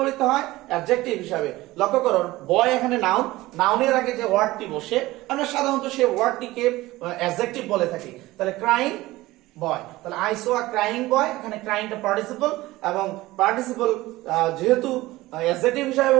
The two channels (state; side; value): quieter; left; 18.4 dB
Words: হয়, অ্যাডজেক্টিভ হিসাবে। লক্ষ্য করো বয় এখানে নাউন, নাউনের আগে যে ওয়ার্ডটি বসে আমরা সাধারণত সেই ওয়ার্ডটিকে অ্যাডজেক্টিভ বলে থাকি। তাহলে ক্রাইং বয়, তাহলে আই সো আ ক্রাইং বয়, এখানে ক্রাইংটা পার্টিসিপল, এবং পার্টিসিপল যেহেতু অ্যাডজেক্টিভ হিসাবে